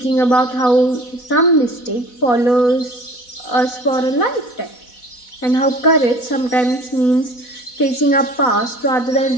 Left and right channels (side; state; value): right; late; 4.1 ms